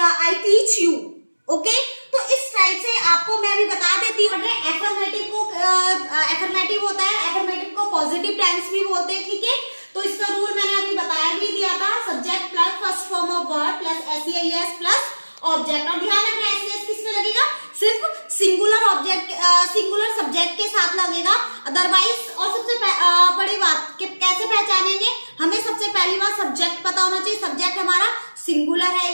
आई टीच यू। ओके, तो इस टाइप से आपको मैं अभी बता देती हूँ। एफर्मेटिव को एफर्मेटिव होता है, एफर्मेटिव को पॉजिटिव टेंस भी बोलते हैं, ठीक है। तो इसका रूल मैंने अभी बताया भी दिया था, subject plus first form of verb plus S plus object. और ध्यान रखना एस किसमें लगेगा, सिर्फ सिंगुलर ऑब्जेक्ट सिंगुलर सब्जेक्ट के साथ लगेगा, अदरवाइज। और सबसे बड़ी बात कि कैसे पहचानेंगे, हमें सबसे पहली बात सब्जेक्ट पता होना चाहिए, सब्जेक्ट हमारा सिंगुलर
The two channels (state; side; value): inverted; both; correlation -1.00